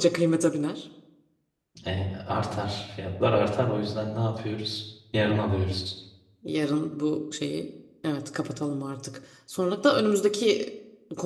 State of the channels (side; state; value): both; identical; correlation 1.00